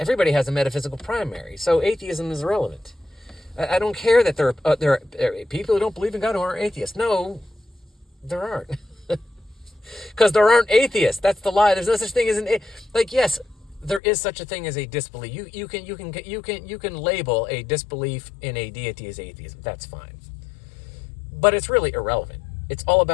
has a metaphysical primary, so atheism is irrelevant. I don't care that there are people who don't believe in God who aren't atheists. No, there aren't. Because there aren't atheists. That's the lie. There's no such thing as yes, there is such a thing as a disbelief. You can label a disbelief in a deity as atheism. That's fine. But it's really irrelevant. It's all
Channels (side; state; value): right; drops out; at 14.0 s